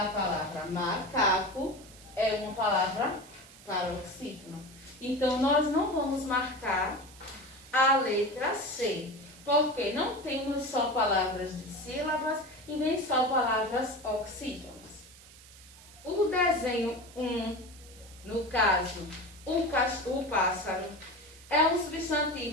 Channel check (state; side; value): noise; right; hiss, 21 dB below the sound